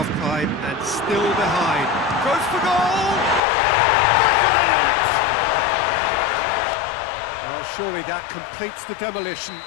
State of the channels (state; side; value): drops out; right; at 3.4 s